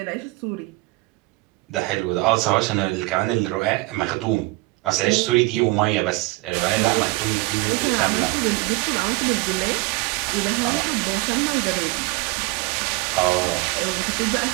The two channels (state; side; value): quieter; left; 22.5 dB